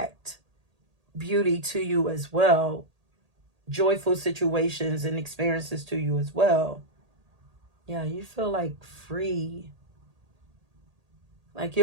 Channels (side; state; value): left; late; 1.8 ms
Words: beauty to you as well, joyful situations and experiences to you as well. Yeah, you feel like free. Like,